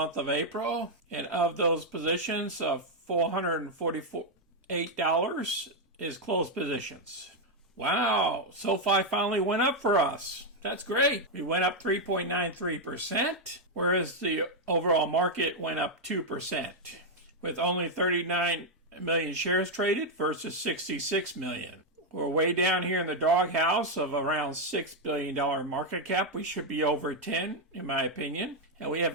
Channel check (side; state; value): both; normal; correlation 0.01